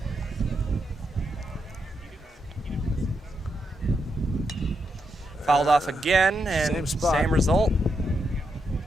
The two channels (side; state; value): both; normal; correlation 0.82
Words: Fouled off again, and Same spot. same result.